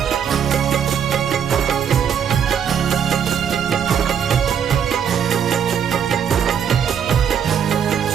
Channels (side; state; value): left; quieter; 8.0 dB